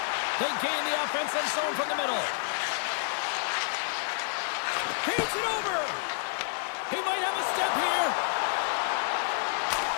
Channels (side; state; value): right; silent; 58 dB below the other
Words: They gain the offensive zone from the middle. Feeds it over. He might have a step here.